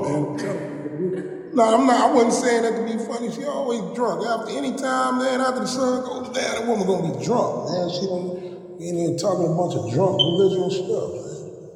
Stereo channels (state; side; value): identical; both; correlation 1.00